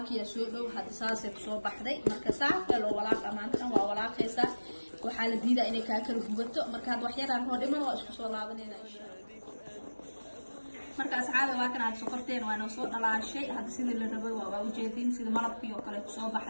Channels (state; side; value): inverted; both; correlation -1.00